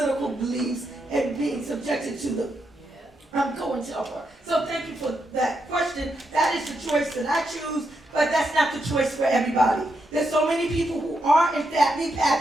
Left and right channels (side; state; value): both; normal; correlation 0.82